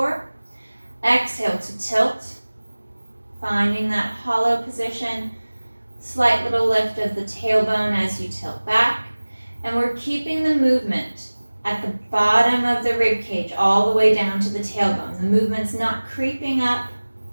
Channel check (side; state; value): both; inverted; correlation -1.00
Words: Exhale to tilt, finding that hollow position. Slight little lift of the tailbone as you tilt back. And we're keeping the movement at the bottom of the rib cage all the way down to the tailbone. The movement's not creeping up